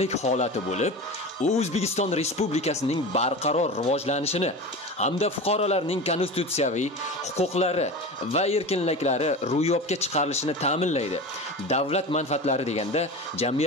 holati bo'lib, O'zbekiston Respublikasining barqaror rivojlanishini hamda fuqarolarning konstitutsiyaviy huquqlari va erkinliklari ro'yobga chiqarilishini ta'minlaydi. Davlat manfaatlari deganda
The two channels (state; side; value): normal; both; correlation 0.30